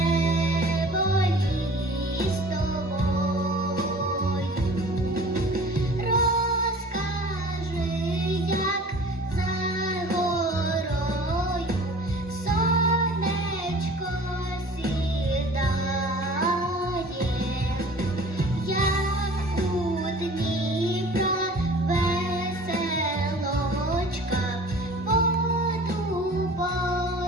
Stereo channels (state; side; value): normal; both; correlation 0.45